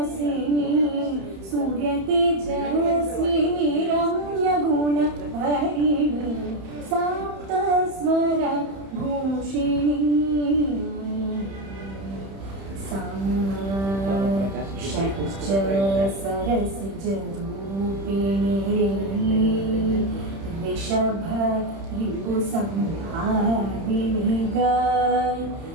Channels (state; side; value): late; left; 31 ms